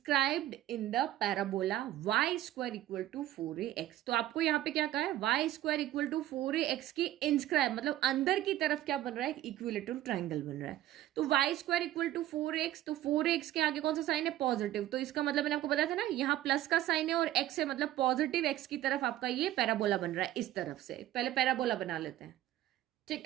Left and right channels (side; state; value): left; quieter; 13.9 dB